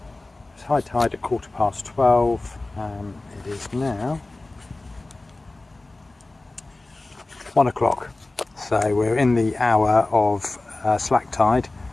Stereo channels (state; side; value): quieter; right; 3.0 dB